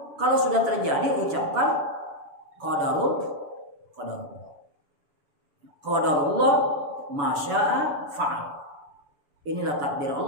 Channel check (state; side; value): late; left; 7.0 ms